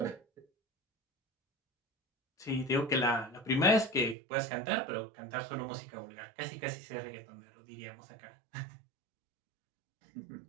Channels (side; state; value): left; drops out; at 4.2 s